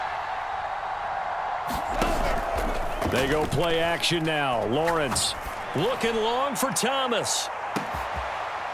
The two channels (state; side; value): identical; both; correlation 1.00